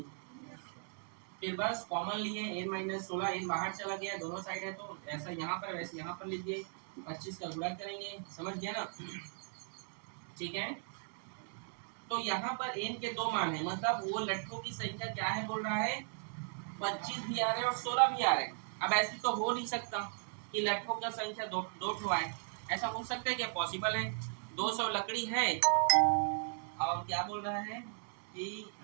फिर बस कॉमन लिए, n माइनस 16, n बाहर चला गया, दोनों साइड है तो ऐसा यहाँ पर वैसे यहाँ पर लीजिए, 25 का गुणा करेंगे। समझ गया ना? ठीक है, तो यहाँ पर n के 2 मान है, मतलब वो लट्ठों की संख्या क्या है बोल रहा है 25 भी आ रहे और 16 भी आ रहे। अब ऐसे तो हो नहीं सकता कि लट्ठों का संख्या दो ठो आए, ऐसा हो सकता है क्या? पॉसिबल है। 200 लकड़ी है और क्या बोल रहा है कि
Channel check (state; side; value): silent; left; 53 dB below the other